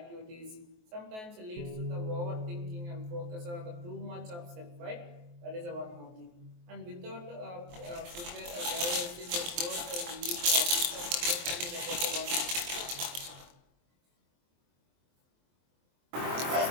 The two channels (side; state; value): left; late; 23 ms